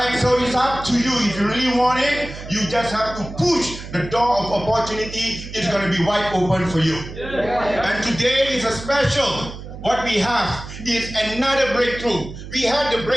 So it's up to you. If you really want it, you just have to push the door of opportunity. It's going to be wide open for you. And today is a special. What we have is another breakthrough. We had the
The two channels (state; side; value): noise; right; hum, 12 dB below the sound